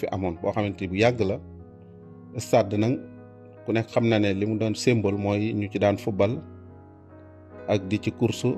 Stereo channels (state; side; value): identical; both; correlation 1.00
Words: amoon boo xamante ni bu yàgg la stade nag ku nekk xam na ne li mu doon symbole mooy ñu ci daan football ak di ci course